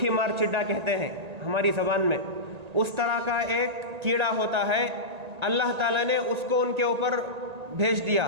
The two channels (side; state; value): left; late; 1.8 ms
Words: مار چڈا کہتے ہیں ہماری زبان میں، اس طرح کا ایک کیڑا ہوتا ہے۔ اللہ تعالیٰ نے اس کو ان کے اوپر بھیج دیا